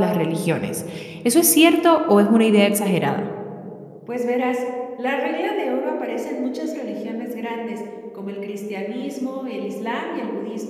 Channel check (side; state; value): both; identical; correlation 1.00